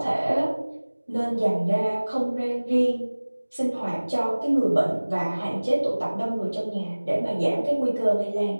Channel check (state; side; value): inverted; both; correlation -1.00